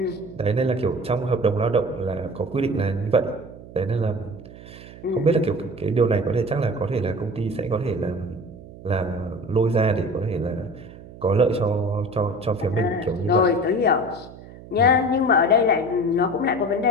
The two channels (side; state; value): right; noise; hum, 17 dB below the sound